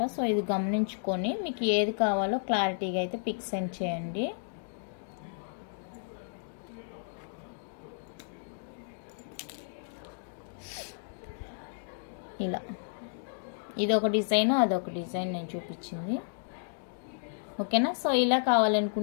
సో ఇది గమనించుకొని మీకు ఏది కావాలో క్లారిటీగా అయితే పిక్ సెండ్ చేయండి. ఇలా ఇదొక డిజైన్, అదొక డిజైన్ నేను చూపించింది. ఓకేనా? సో ఇలా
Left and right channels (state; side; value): silent; right; digital silence